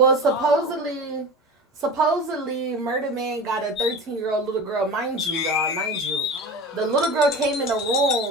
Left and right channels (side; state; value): both; normal; correlation 0.32